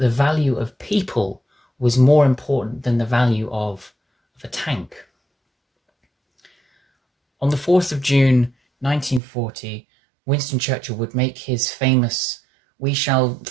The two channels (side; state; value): left; drops out; at 9.2 s